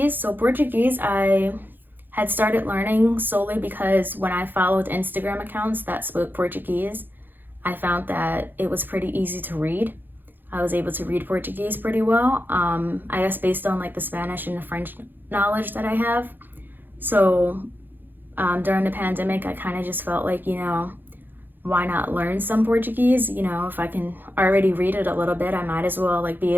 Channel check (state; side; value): late; left; 0.092 ms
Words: So Portuguese, I had started learning solely because when I followed Instagram accounts that spoke Portuguese, I found that it was pretty easy to read. I was able to read Portuguese pretty well, I guess based on like the Spanish and the French knowledge that I have. So during the pandemic, I kind of just felt like, you know, why not learn some Portuguese? You know, if I can already read it a little bit, I might as well like be